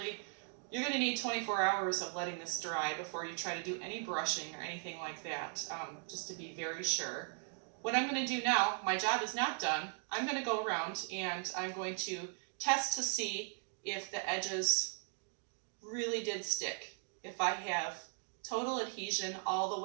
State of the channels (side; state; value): left; silent; 52 dB below the other